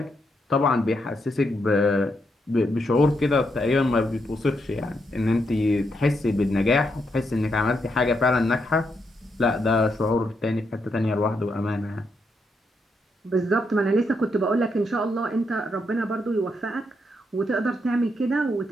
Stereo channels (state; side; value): normal; both; correlation 0.80